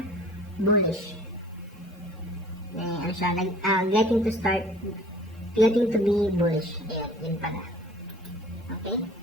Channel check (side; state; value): both; normal; correlation 0.49